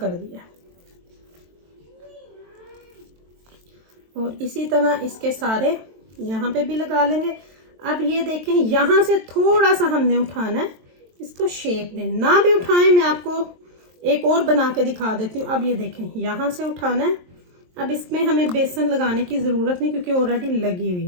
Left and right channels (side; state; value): left; late; 23 ms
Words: दिया। और इसी तरह इसके सारे यहाँ पे भी लगा लेंगे। अब ये देखें, यहाँ से थोड़ा सा हमने उठाना है, इसको शेप देना। ना भी उठाएं, मैं आपको एक और बना के दिखा देती हूँ। अब ये देखें, यहाँ से उठाना है। अब इसमें हमें बेसन लगाने की ज़रूरत नहीं, क्योंकि ऑलरेडी लगी हुई